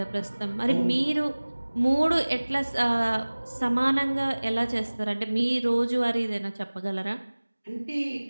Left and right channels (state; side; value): inverted; both; correlation -1.00